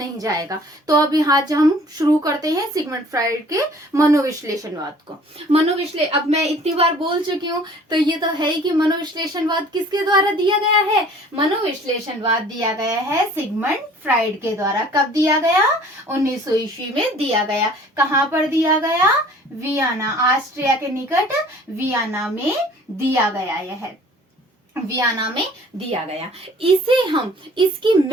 जाएगा। तो अब यहाँ हम शुरू करते हैं सिगमंड फ्राइड के मनोविश्लेषणवाद को। अब मैं इतनी बार बोल चुकी हूँ, तो ये तो है ही कि मनोविश्लेषणवाद किसके द्वारा दिया गया है। मनोविश्लेषणवाद दिया गया है सिगमंड फ्राइड के द्वारा। कब दिया गया? 1900 ईस्वी में दिया गया। कहाँ पर दिया गया? वियना, ऑस्ट्रिया के निकट वियना में दिया गया। यह वियना में दिया गया। इसे हम इसकी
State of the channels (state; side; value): normal; both; correlation 0.51